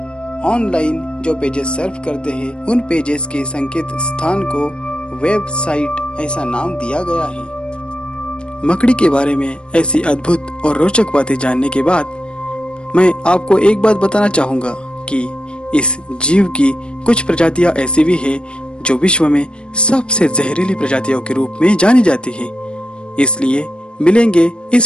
ऑनलाइन जो पेजेस सर्फ करते हैं, उन पेजेस के संकेत स्थान को वेबसाइट ऐसा नाम दिया गया है। मकड़ी के बारे में ऐसी अद्भुत और रोचक बातें जानने के बाद मैं आपको एक बात बताना चाहूँगा कि इस जीव की कुछ प्रजातियां ऐसी भी हैं जो विश्व में सबसे जहरीली प्रजातियों के रूप में जानी जाती है। इसलिए मिलेंगे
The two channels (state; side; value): late; right; 0.055 ms